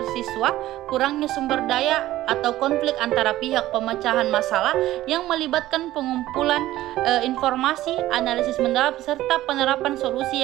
siswa, kurangnya sumber daya, atau konflik antara pihak. Pemecahan masalah yang melibatkan pengumpulan informasi, analisis mendalam, serta penerapan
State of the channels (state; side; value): quieter; left; 15.2 dB